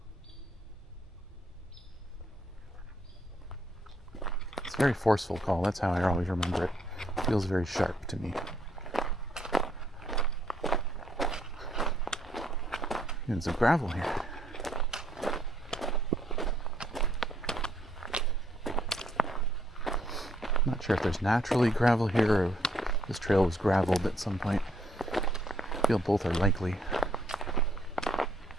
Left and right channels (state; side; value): normal; both; correlation 0.69